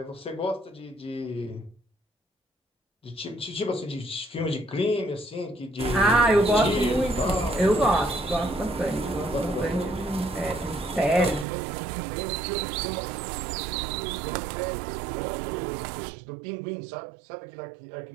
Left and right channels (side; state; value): left; drops out; at 11.5 s